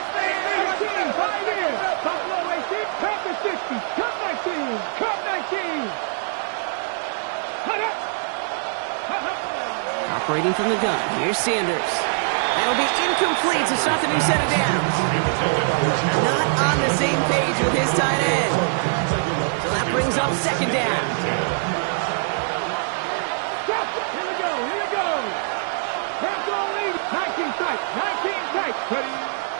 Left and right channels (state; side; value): silent; left; digital silence